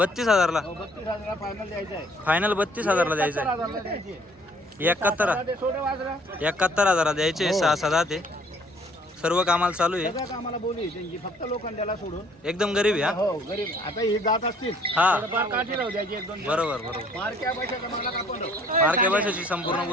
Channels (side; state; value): both; normal; correlation 0.59